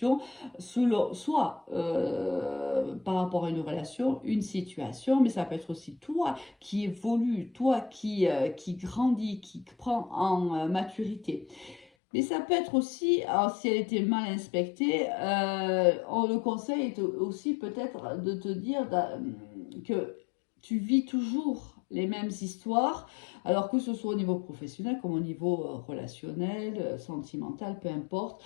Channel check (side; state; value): right; drops out; at 11.9 s